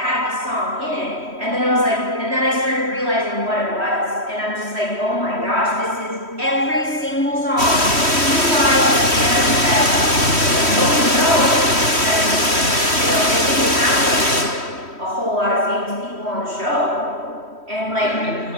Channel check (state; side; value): late; left; 3.1 ms